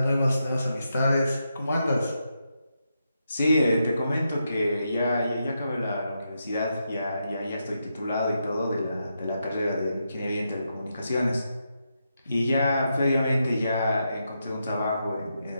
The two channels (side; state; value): both; inverted; correlation -0.84